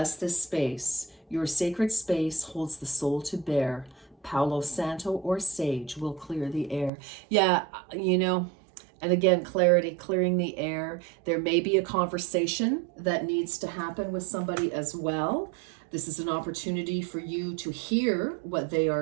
this space. Your sacred space holds the soul to bear. Palo Santo or sage will clear the air. Yeah, and again, clarity, clearing the air. There may be a conversation that needs to happen with somebody as well. This is an opportunity for you to hear what they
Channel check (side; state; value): left; drops out; at 6.9 s